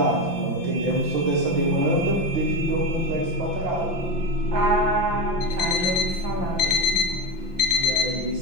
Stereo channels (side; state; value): left; late; 5.8 ms